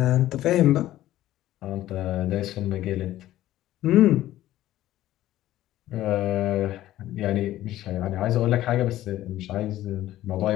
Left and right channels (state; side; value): quieter; right; 14.3 dB